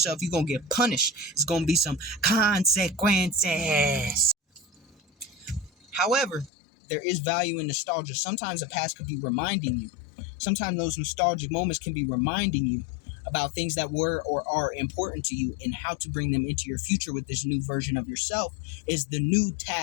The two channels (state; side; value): drops out; right; at 6.5 s